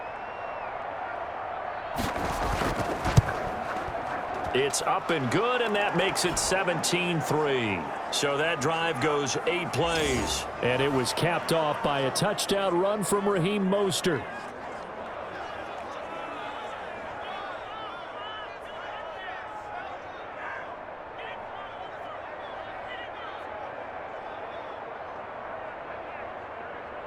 It's up and good, and that makes it 17-3. So that drive goes 8 plays. And it was capped off by a touchdown run from Raheem Mostert.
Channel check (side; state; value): both; identical; correlation 1.00